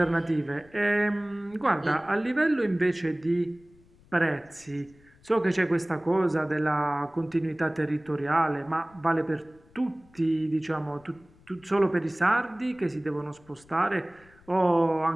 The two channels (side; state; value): left; noise; rumble, 28 dB below the sound